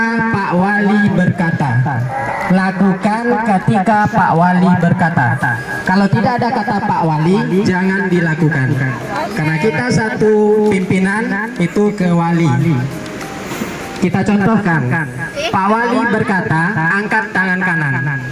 Pak Wali berkata. Lakukan ketika Pak Wali berkata. Kalau tidak ada kata Pak Wali, jangan dilakukan. Karena kita satu pimpinan itu ke wali. Kita contohkan, Pak Wali berkata, angkat tangan kanan.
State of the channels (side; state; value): both; identical; correlation 1.00